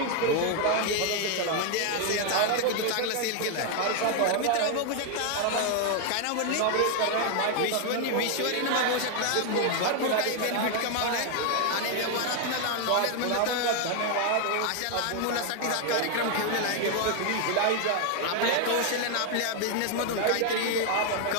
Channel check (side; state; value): both; different; correlation 0.00